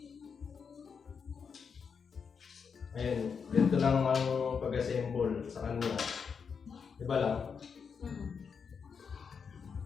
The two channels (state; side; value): quieter; right; 6.2 dB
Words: Ayun, ganito lang ang pag-assemble sa kanila. Diba lang?